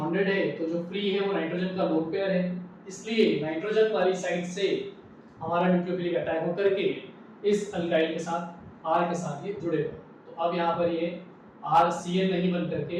है, तो जो फ्री है वो नाइट्रोजन का लोन पेयर है, इसलिए नाइट्रोजन वाली साइड से हमारा न्यूक्लियोफिलिक अटैक होकर के इस अल्काइल के साथ R के साथ ये जुड़ेगा। तो अब यहाँ पर ये RCN नहीं बन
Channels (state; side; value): identical; both; correlation 1.00